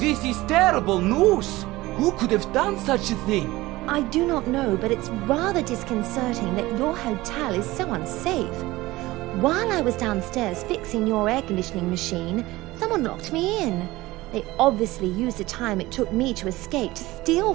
is terrible news! Who could have done such a thing? I do not know, but it's rather disconcerting that your hotel is so unsafe. While I was downstairs fixing your air conditioning machine, someone locked me in. They obviously used the time it took me to escape to steal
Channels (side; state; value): left; quieter; 18.9 dB